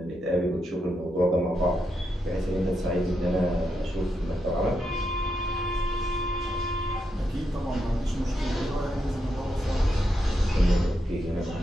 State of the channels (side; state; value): both; normal; correlation 0.83